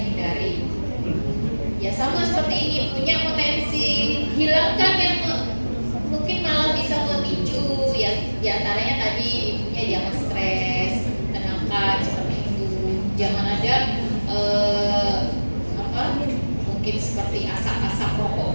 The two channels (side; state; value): both; inverted; correlation -1.00